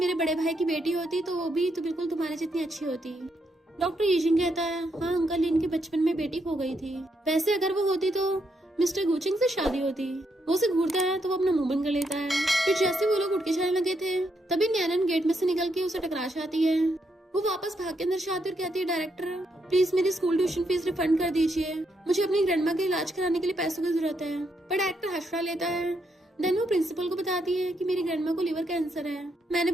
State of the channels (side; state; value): both; normal; correlation 0.78